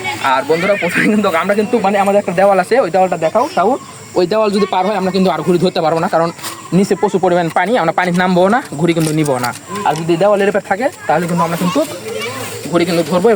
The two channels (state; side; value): identical; both; correlation 1.00